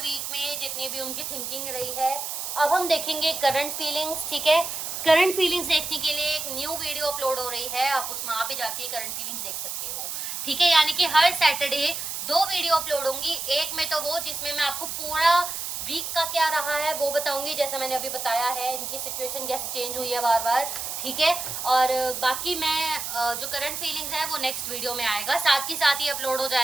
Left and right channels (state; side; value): noise; right; hiss, 5 dB below the sound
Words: वीक में जितनी भी उनकी थिंकिंग रही है। अब हम देखेंगे करंट फीलिंग्स, ठीक है। करंट फीलिंग्स देखने के लिए एक न्यू वीडियो अपलोड हो रही है, आप उसमें वहाँ पे जाके करंट फीलिंग्स देख सकते हो, ठीक है। यानी कि हर सैटरडे 2 वीडियो अपलोड होंगी, एक में तो वो जिसमें मैं आपको पूरा वीक का क्या रहा है वो बताऊंगी, जैसे मैंने अभी बताया है इनकी सिचुएशन कैसे चेंज हुई है बार बार, ठीक है। और बाकी मैं जो करंट फीलिंग्स है वो नेक्स्ट वीडियो में आएगा, साथ ही साथ ही अपलोड हो